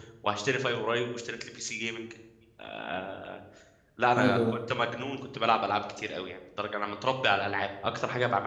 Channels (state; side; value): identical; both; correlation 1.00